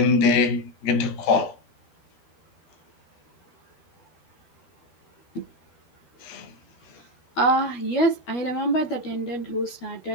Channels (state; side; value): late; right; 12 ms